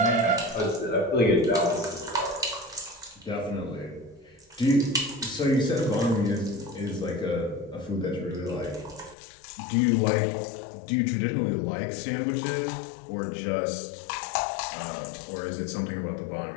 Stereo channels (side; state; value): right; drops out; at 9.2 s